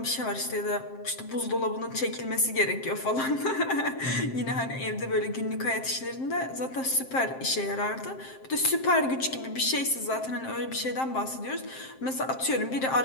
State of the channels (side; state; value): right; late; 7.6 ms